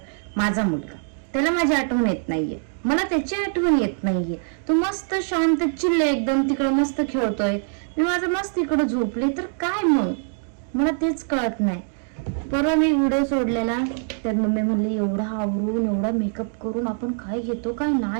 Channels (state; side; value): silent; left; digital silence